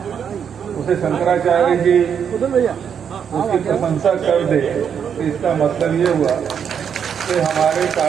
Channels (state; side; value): quieter; left; 7.7 dB